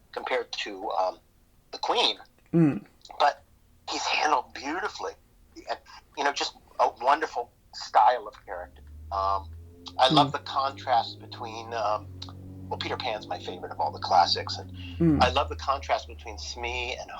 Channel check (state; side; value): identical; both; correlation 1.00